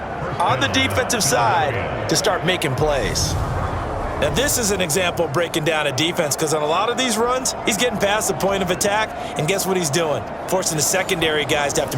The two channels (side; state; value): both; identical; correlation 1.00